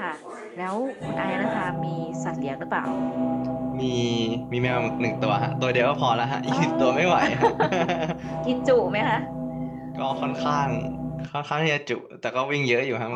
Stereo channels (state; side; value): identical; both; correlation 1.00